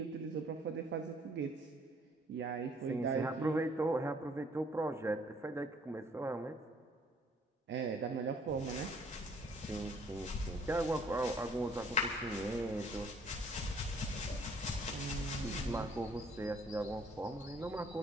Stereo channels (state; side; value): normal; both; correlation 0.61